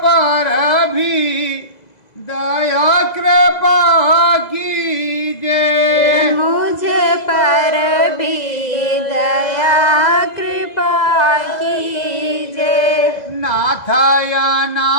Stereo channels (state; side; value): late; right; 2.0 ms